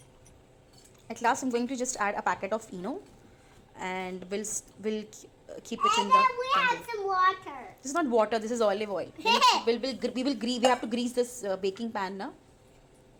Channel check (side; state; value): both; identical; correlation 1.00